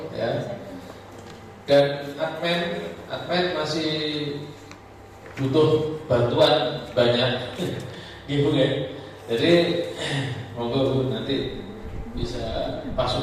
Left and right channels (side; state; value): both; identical; correlation 1.00